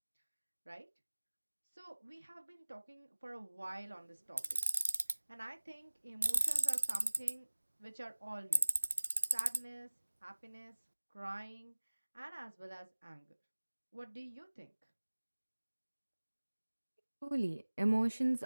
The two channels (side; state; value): both; inverted; correlation -1.00